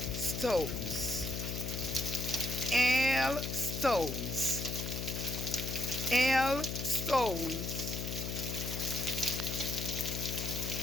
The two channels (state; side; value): noise; left; hum, 4 dB below the sound